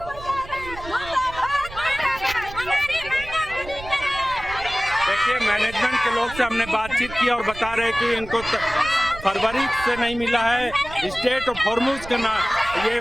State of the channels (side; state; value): right; noise; rumble, 14 dB below the sound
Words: देखिए मैनेजमेंट के लोग से हमने बातचीत की और बता रहे कि इनको फरवरी से नहीं मिला है। स्टेट ऑफ हॉर्मुज का ना ये